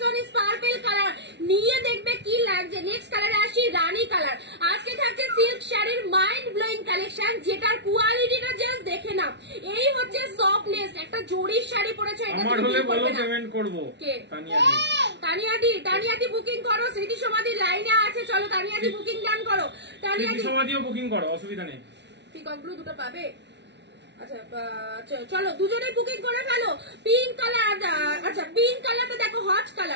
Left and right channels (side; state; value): left; late; 0.51 ms